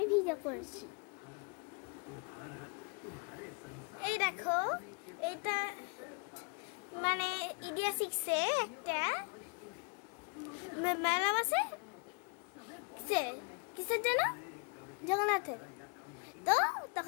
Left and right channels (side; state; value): right; quieter; 35.3 dB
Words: ভিডিও করছি। এই দেখো, এটা মানে ইন্ডিয়া 6-এ একটা মেলা বসে। কিসের জন্য? জগন্নাথের। তো